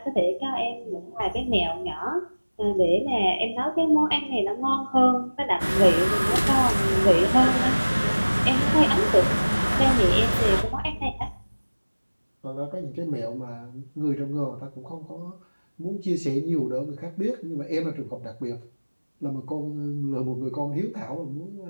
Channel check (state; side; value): inverted; both; correlation -1.00